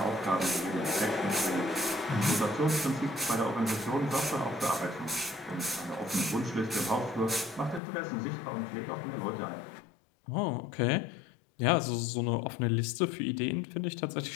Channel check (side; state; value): right; drops out; at 7.8 s